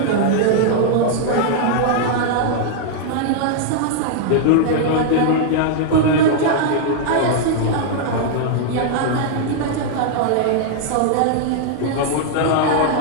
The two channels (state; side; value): different; both; correlation -0.01